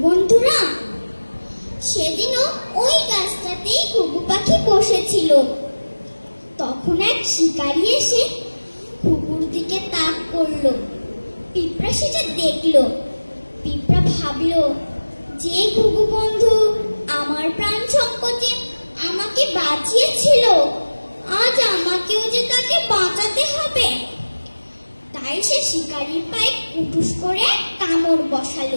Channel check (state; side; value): inverted; both; correlation -1.00